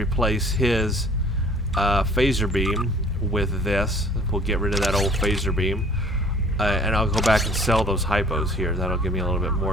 his phaser beam with this. We'll get rid of that old phaser beam. And I'll go back and sell those hypos here. That'll give me a little bit more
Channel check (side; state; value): both; normal; correlation 0.52